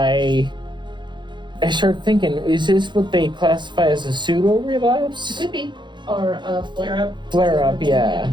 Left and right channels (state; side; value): late; left; 0.22 ms